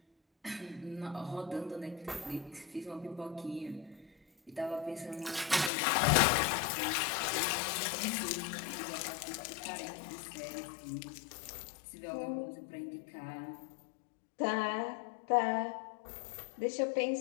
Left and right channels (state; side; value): drops out; right; at 5.7 s